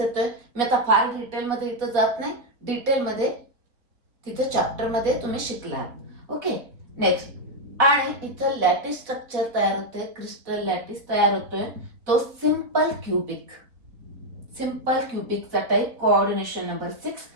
मी आता फार डिटेल मध्ये इथं जात नाही, डिटेल मध्ये तिथं चॅप्टर मध्ये तुम्ही शिकला. Okay, next. आणि इथं लॅटिस स्ट्रक्चर तयार होते, क्रिस्टल लॅटिस तयार होतोय, तो सिंपल क्युबिक. सिंपल क्युबिकचा type, coordination number 6,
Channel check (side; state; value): left; late; 3.8 ms